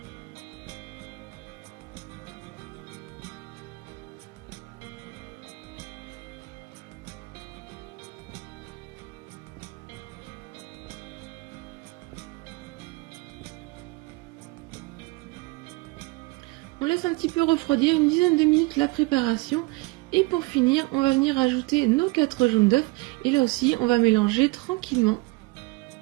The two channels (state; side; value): quieter; left; 24.3 dB